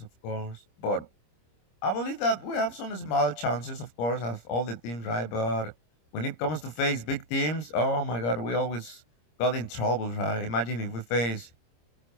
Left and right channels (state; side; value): late; right; 26 ms